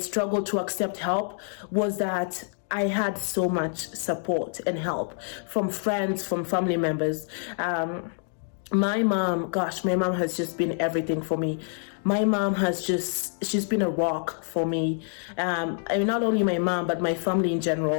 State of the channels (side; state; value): right; silent; 58 dB below the other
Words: to accept help, was that I had so much support and help from friends, from family members. My mom has just been everything for me. My mom she's been a rock for me. Not only my mom, but my family in